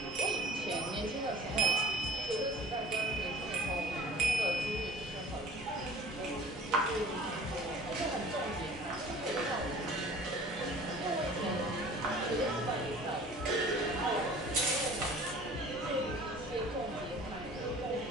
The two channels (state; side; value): normal; both; correlation 0.46